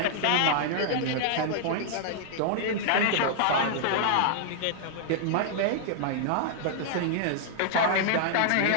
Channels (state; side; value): different; both; correlation -0.01